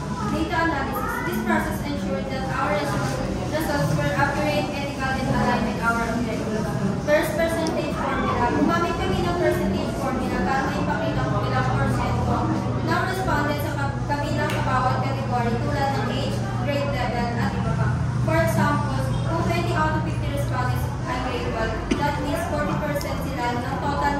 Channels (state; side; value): identical; both; correlation 1.00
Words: Data analysis. This process ensures that our results were accurate, ethical, and aligned with our objectives. First, percentage formula. Gumamit kami ng percentage formula para maipakita kung ilang porsyento ng respondents sa kabilang bawat category tulad ng age, grade level, at iba pa. For example, kung 20 out of 50 respondents ay grade 12, that means 40% sila ng total